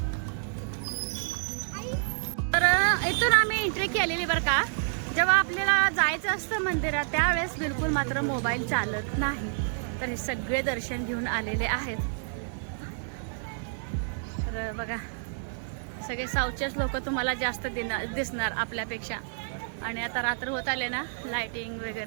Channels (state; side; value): silent; left; digital silence